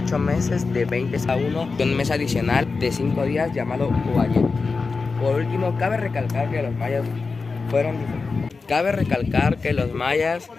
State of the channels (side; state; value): right; quieter; 4.4 dB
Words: meses de 20 a 1 y un mes adicional de 5 días llamado Uayet. Por último, cabe recalcar que los mayas